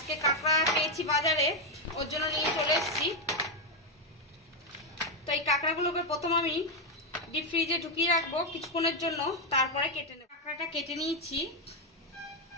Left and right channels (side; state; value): both; normal; correlation 0.04